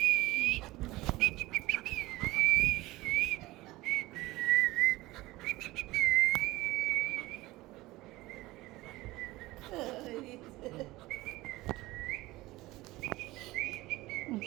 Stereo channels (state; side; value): quieter; left; 19.0 dB